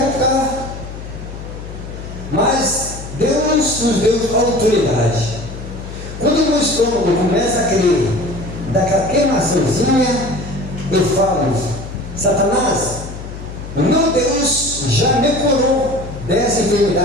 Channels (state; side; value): noise; left; hum, 11 dB below the sound